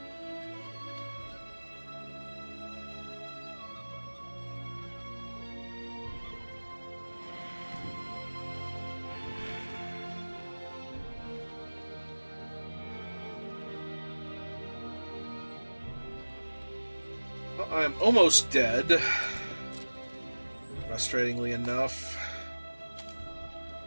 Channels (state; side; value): inverted; both; correlation -1.00